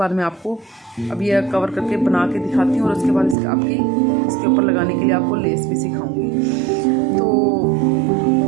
मैं आपको अब ये कवर करके बना के दिखाती हूँ और उसके बाद इसके ऊपर लगाने के लिए आपको लेस भी सिखाऊंगी। तो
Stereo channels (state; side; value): drops out; left; at 3.4 s